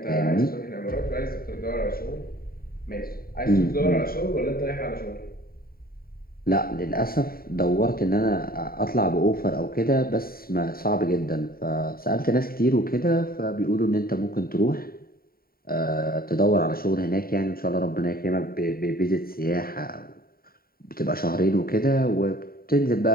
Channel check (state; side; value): late; right; 0.43 ms